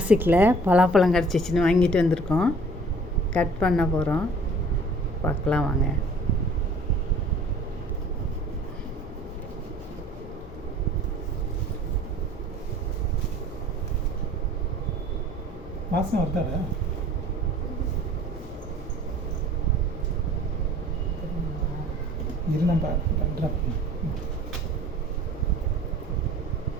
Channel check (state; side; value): noise; left; hum, 19 dB below the sound